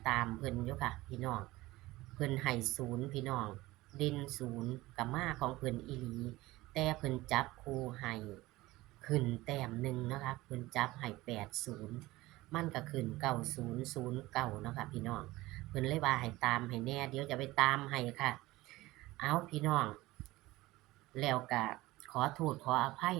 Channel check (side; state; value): left; quieter; 18.8 dB